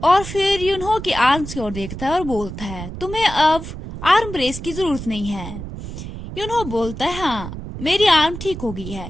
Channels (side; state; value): right; noise; rumble, 9 dB below the sound